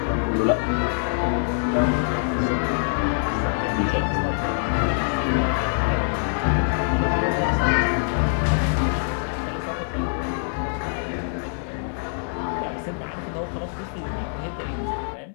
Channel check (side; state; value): right; silent; 59 dB below the other